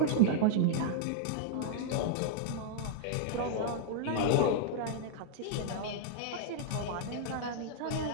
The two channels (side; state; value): both; different; correlation -0.01